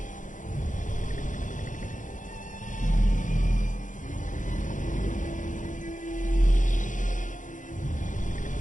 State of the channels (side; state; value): right; late; 0.37 ms